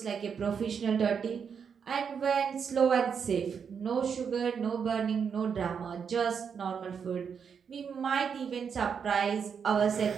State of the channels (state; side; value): quieter; left; 6.8 dB